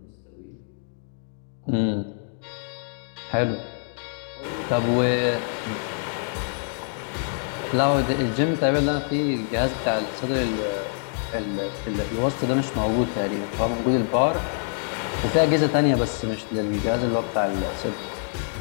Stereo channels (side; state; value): right; silent; digital silence